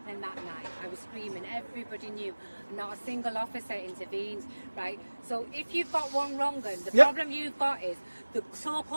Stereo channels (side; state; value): both; inverted; correlation -1.00